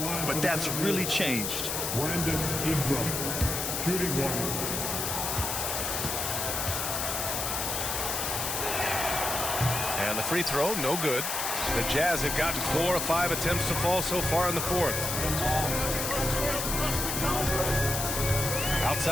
but that's really changed. Brandon Ingram, shooting 1. And the free throw, no good. The Jazz have gotten 4 of 5 attempts to fall so far in the fourth.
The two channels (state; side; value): noise; left; hiss, 1 dB below the sound